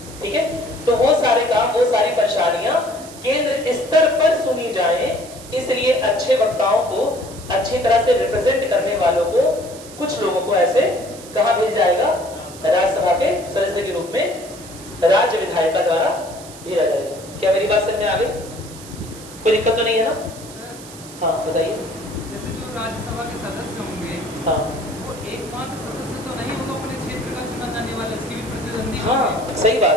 ठीक है। तो वो सारे काम, वो सारी परेशानियां केंद्र स्तर पर सुनी जाए, इसलिए अच्छे वक्ताओं को, अच्छी तरह से रिप्रेजेंट करने वालों को, कुछ लोगों को ऐसे कहां भेजा जाएगा? राज्यसभा के सदस्य के रूप में राज्य विधायिका द्वारा भेजा जाएगा। क्या मेरी बात समझ में आ गई? कोई दिक्कत तो नहीं है ना? हाँ बताइए। जैसे जो राज्यसभा के सदस्य होंगे, हाँ, वो एकमात्र सदस्य तो नहीं होगा अपने क्षेत्र का चुना जाने वाला, इसकी भी प्रतिद्वंदी। हाँ सही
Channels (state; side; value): noise; right; hiss, 17 dB below the sound